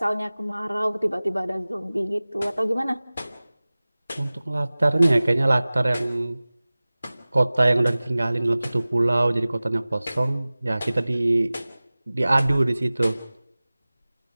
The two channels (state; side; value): inverted; both; correlation -0.99